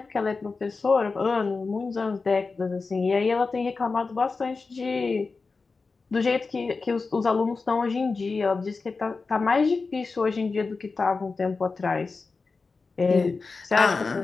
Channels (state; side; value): quieter; right; 4.2 dB